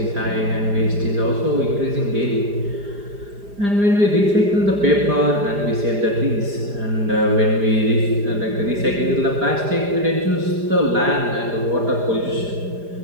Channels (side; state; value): left; late; 4.9 ms